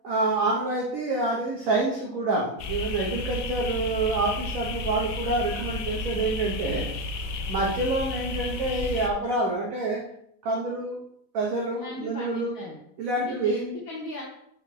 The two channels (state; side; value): late; left; 4.0 ms